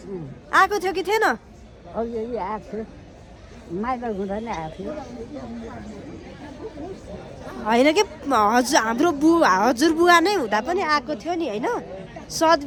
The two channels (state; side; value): identical; both; correlation 1.00